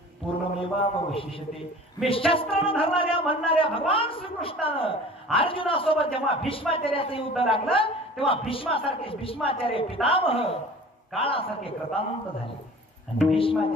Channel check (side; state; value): both; normal; correlation 0.43